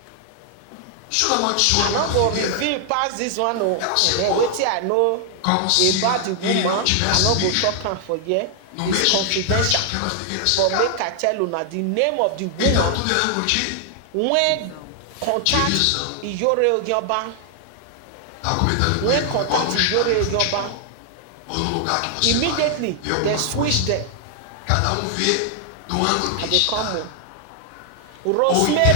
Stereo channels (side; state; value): both; different; correlation 0.00